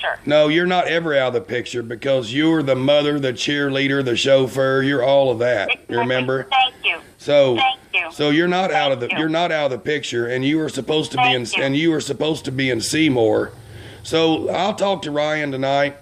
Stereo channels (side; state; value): both; identical; correlation 1.00